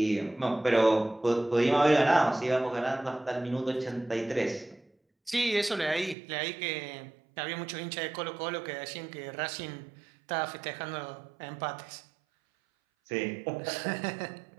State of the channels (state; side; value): drops out; left; at 6.2 s